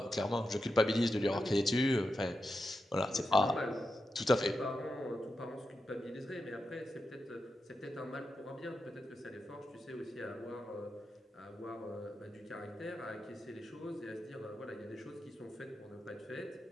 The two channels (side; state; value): both; normal; correlation 0.88